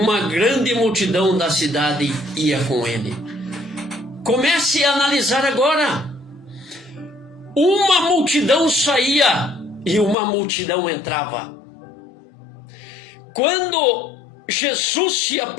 grande multidão da cidade ia com ele. Comece a analisar agora. Uma multidão saía e uma multidão entrava. Quando Jesus se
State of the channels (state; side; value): drops out; right; at 10.2 s